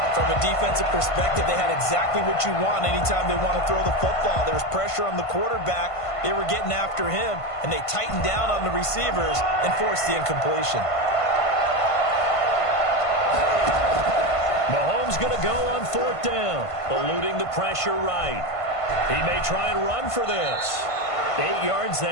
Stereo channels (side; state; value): right; late; 1.5 ms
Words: From a defensive perspective, they had exactly what you want anytime they want to throw the football. There was pressure on the quarterback. They were getting after him, and they tightened down on the receivers and forced the incompletion. Mahomes going to go on 4th down, eluding the pressure right. He may try and run for this. 8 yards